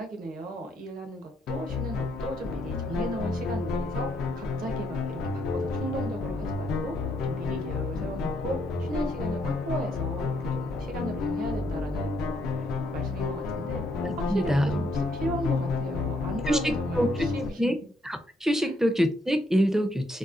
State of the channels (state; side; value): normal; both; correlation 0.73